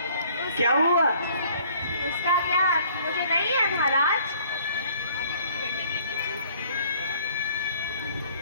क्या हुआ? उसका क्या मुझे नहीं है महाराज।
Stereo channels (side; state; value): both; inverted; correlation -0.58